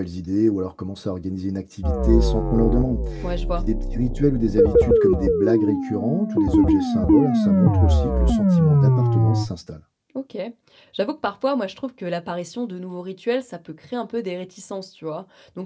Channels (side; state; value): both; identical; correlation 1.00